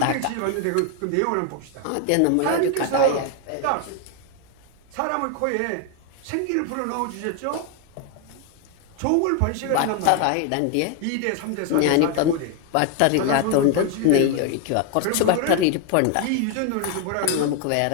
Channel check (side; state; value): both; different; correlation 0.01